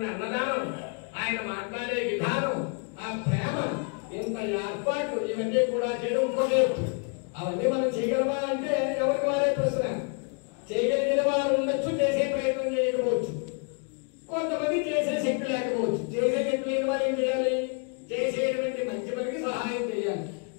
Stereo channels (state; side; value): quieter; right; 37.5 dB